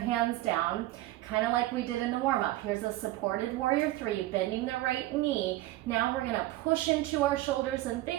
down, kind of like we did in the warm-up. Here's a supported warrior three, bending the right knee. Now we're gonna push into our shoulders and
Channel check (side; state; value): left; quieter; 16.9 dB